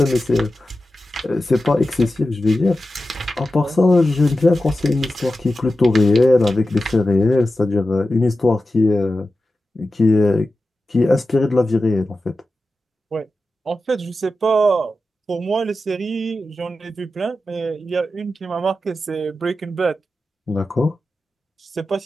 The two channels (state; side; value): normal; both; correlation 0.93